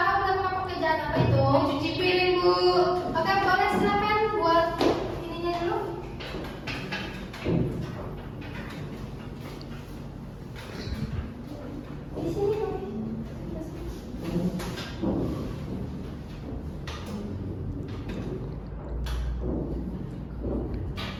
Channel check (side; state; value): both; identical; correlation 1.00